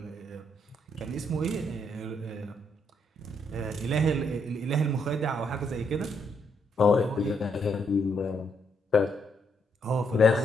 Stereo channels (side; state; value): both; normal; correlation 0.75